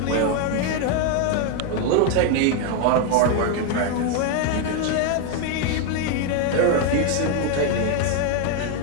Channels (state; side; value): different; both; correlation 0.01